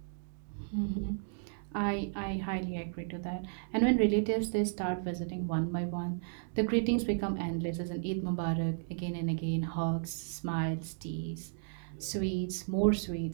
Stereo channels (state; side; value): silent; left; digital silence